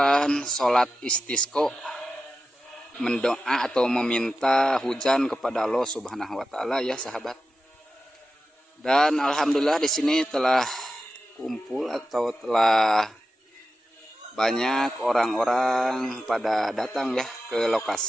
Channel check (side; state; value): both; normal; correlation 0.92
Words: sholat istisqo, mendoa atau meminta hujan kepada Allah Subhanahu wa taala ya sahabat. Dan alhamdulillah di sini telah kumpul atau telah banyak orang-orang pada datang ya ke